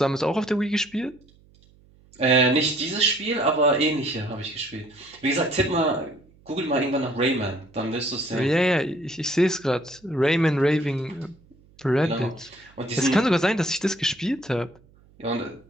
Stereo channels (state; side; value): noise; right; hum, 29 dB below the sound